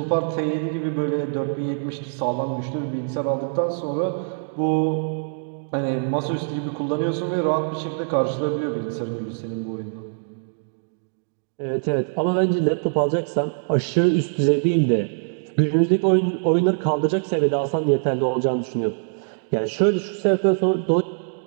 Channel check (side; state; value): left; silent; digital silence